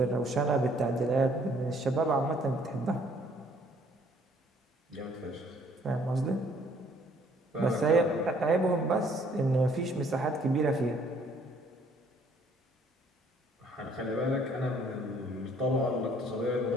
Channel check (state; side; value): normal; both; correlation 0.61